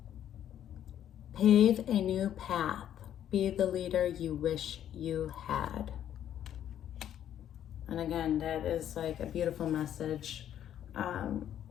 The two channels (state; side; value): quieter; right; 10.5 dB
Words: Pave a new path. Be the leader you wish you had. And again, that is like a beautiful message